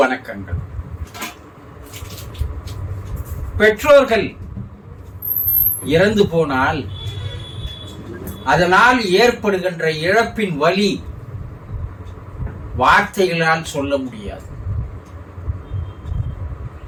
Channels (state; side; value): identical; both; correlation 1.00